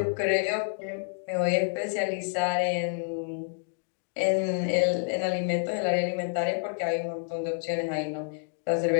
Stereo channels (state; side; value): silent; right; digital silence